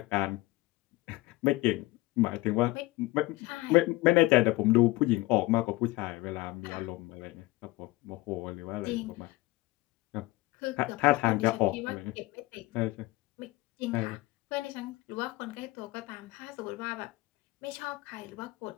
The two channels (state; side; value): quieter; right; 20.6 dB